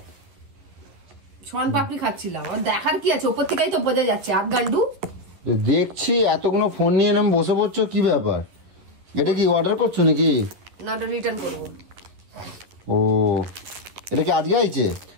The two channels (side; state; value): left; late; 11 ms